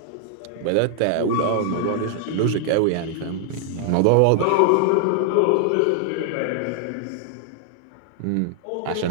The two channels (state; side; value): different; both; correlation 0.00